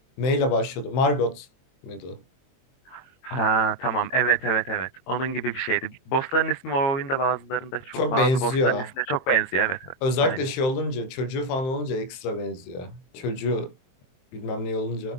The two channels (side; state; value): right; late; 23 ms